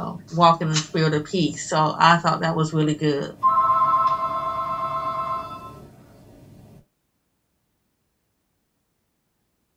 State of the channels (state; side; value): identical; both; correlation 1.00